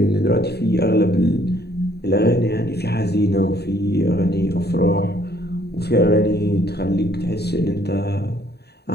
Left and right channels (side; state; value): right; late; 0.48 ms